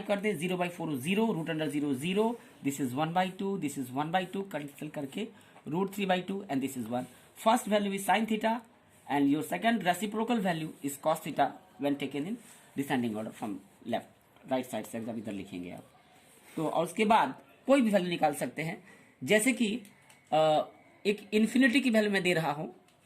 कर दें। 0/4 0, √0 0, this is 1/2, this is 1/2, cancel करके √3/2 and this is 1। First value is sine theta and your second reciprocal value is cos theta when taken in descending order from left right side से एकदम इधर लिखेंगे आप। तो और उसके बाद कोई भी वैल्यू निकाल सकते हैं, जैसे कि एक इन्फिनिटी की वैल्यू मैं दे रहा हूं,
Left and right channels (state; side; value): identical; both; correlation 1.00